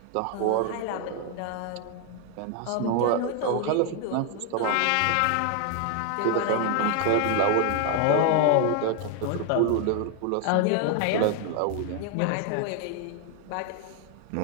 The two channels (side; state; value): both; different; correlation 0.00